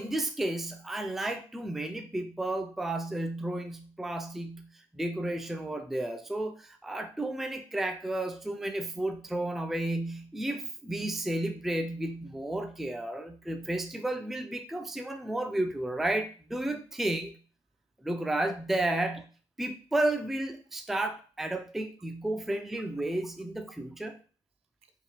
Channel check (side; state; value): both; normal; correlation 0.87